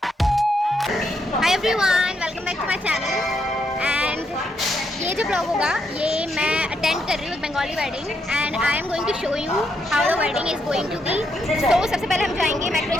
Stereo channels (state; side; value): normal; both; correlation 0.78